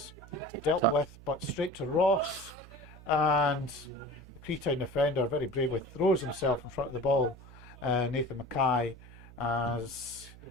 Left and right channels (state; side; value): noise; right; hum, 19 dB below the sound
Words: dealt with, but straight to Ross. And the Creetown defender very bravely throws himself in front of the ball. Nathan Mackay, as